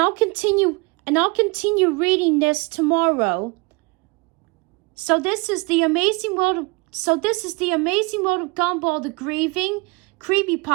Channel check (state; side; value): quieter; left; 28.3 dB